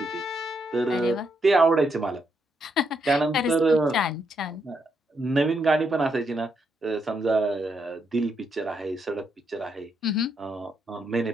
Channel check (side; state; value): both; normal; correlation 0.78